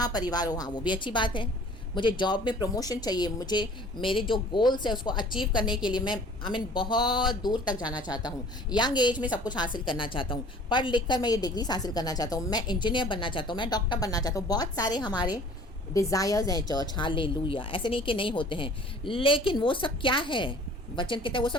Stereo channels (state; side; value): normal; both; correlation 0.50